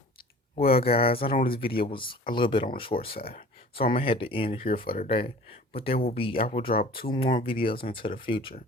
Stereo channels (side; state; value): both; normal; correlation 0.44